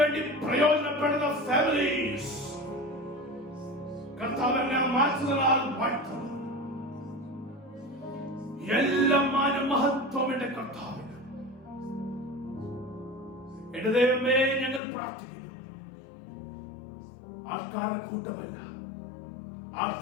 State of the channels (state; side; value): drops out; right; at 14.8 s